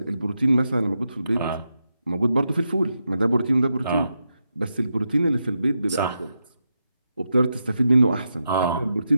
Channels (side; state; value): both; inverted; correlation -0.86